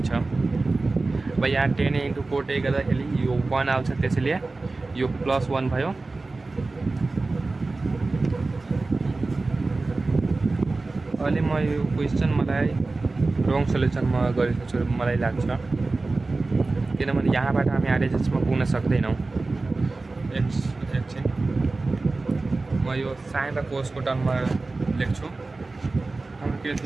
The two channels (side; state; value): left; quieter; 3.5 dB